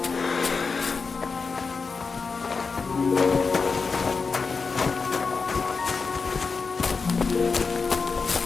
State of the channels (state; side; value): quieter; right; 4.8 dB